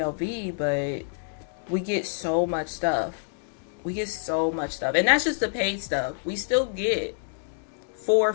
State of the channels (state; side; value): silent; right; digital silence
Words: but we get so much stuff. We get so much stuff. And that's just the paid stuff. We still get 4